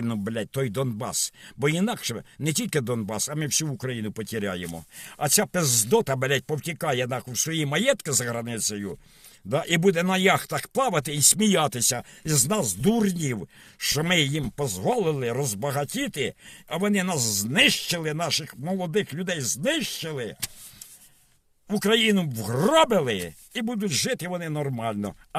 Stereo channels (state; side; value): identical; both; correlation 1.00